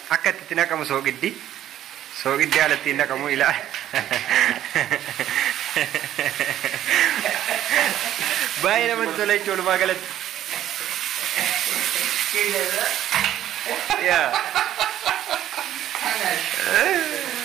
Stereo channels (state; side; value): quieter; left; 11.9 dB